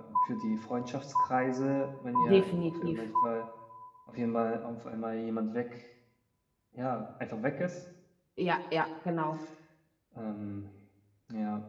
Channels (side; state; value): both; identical; correlation 1.00